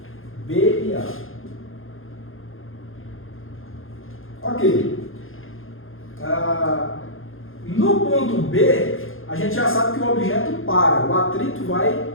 B e A. Ok. No ponto B, a gente já sabe que o objeto para. O atrito vai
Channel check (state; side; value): late; right; 0.60 ms